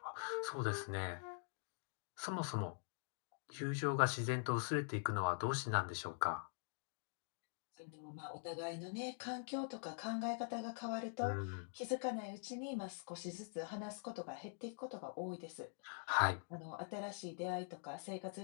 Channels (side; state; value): right; silent; digital silence